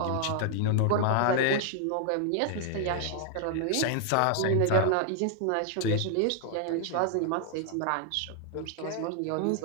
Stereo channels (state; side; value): different; both; correlation 0.00